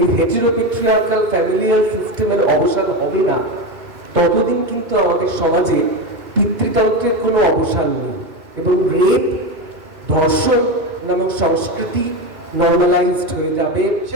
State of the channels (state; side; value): late; left; 2.5 ms